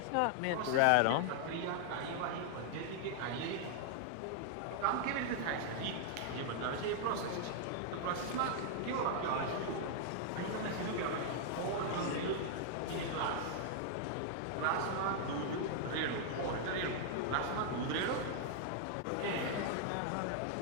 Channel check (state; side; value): different; both; correlation 0.00